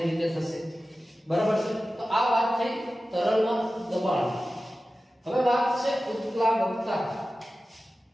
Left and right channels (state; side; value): normal; both; correlation 0.95